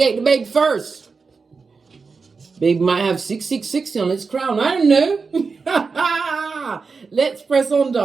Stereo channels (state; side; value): quieter; left; 4.8 dB